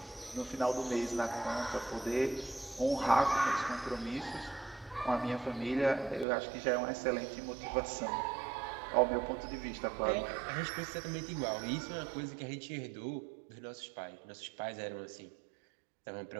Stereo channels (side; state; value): left; drops out; at 6.2 s